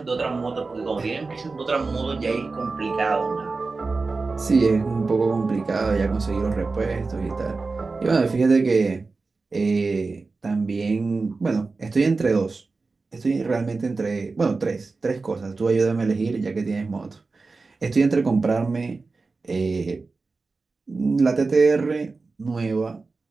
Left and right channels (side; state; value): left; quieter; 3.9 dB